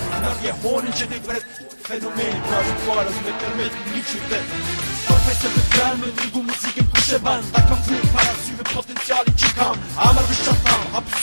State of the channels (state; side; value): inverted; both; correlation -1.00